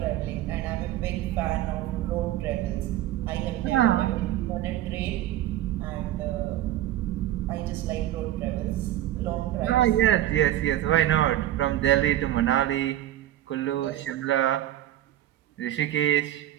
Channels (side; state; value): left; quieter; 13.2 dB